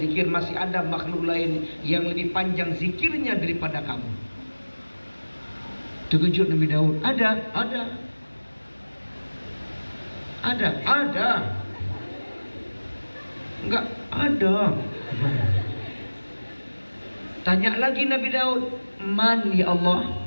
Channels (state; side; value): inverted; both; correlation -1.00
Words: masih ada makhluk lain yang lebih panjang zikirnya daripada kamu. Terkejut Nabi Daud. Ada. Enggak ada. Tanya lagi Nabi Daud, Man ya Allah?